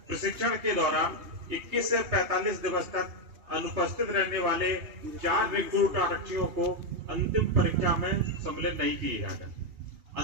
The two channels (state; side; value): late; left; 2.8 ms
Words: प्रशिक्षण के दौरान 21 से 45 दिवस तक अनुपस्थित रहने वाले 4 रिक्रूट आरक्षियों को अंतिम परीक्षा में सम्मिलित नहीं किया गया।